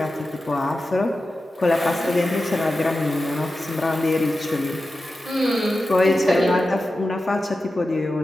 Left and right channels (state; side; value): normal; both; correlation 0.92